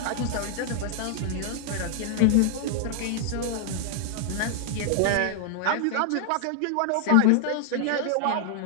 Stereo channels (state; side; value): different; both; correlation 0.00